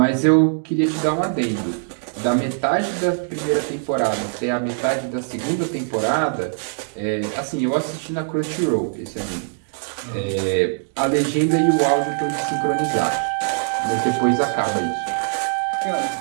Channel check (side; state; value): left; silent; digital silence